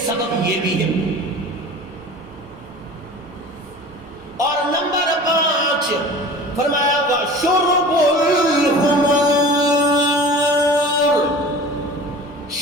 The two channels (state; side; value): normal; both; correlation 0.40